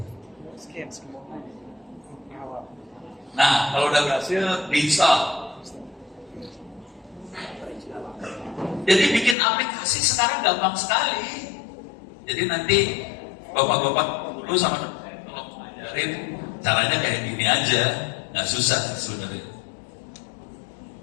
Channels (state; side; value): drops out; right; at 9.3 s